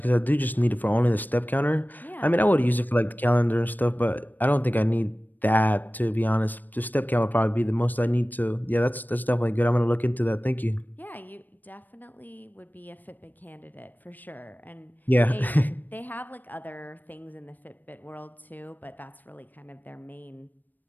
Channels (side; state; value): right; late; 0.088 ms